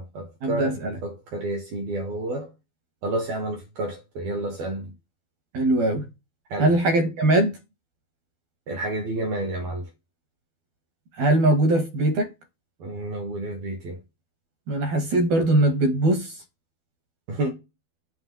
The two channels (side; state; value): left; late; 12 ms